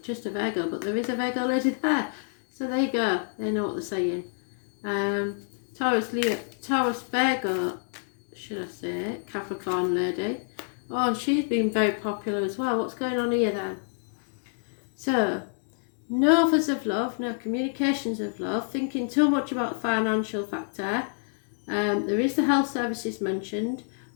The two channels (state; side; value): silent; right; 60 dB below the other